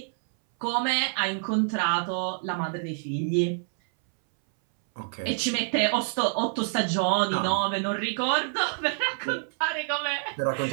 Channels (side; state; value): left; silent; 60 dB below the other